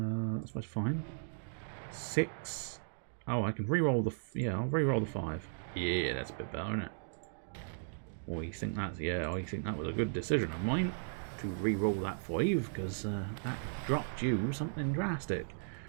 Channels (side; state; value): left; silent; digital silence